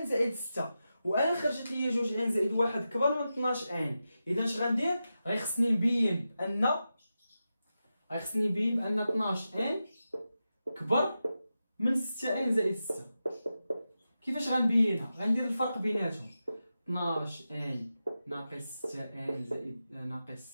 زائد 6، وانا خرجت لي 2 ان زائد 1 كبر من 12 ان. اذا اش غندير؟ غيخصني نبين بان 12 ان كبر من 6 ان زائد 6. كيفاش غنبينها؟ غندير الفرق بيناتهم. 12 ان ناقص 6 ان زائد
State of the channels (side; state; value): both; inverted; correlation -0.91